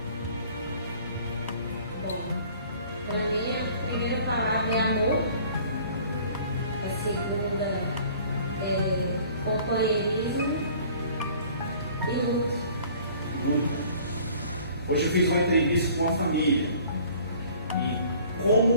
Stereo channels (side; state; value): both; inverted; correlation -0.52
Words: Para mim, a primeira palavra é amor, a segunda é companheirismo e luta. Luta. Hoje eu fiz uma entrevista com uma família e